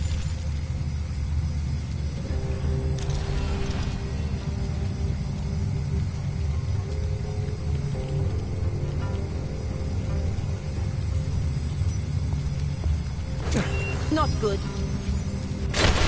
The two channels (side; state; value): both; identical; correlation 1.00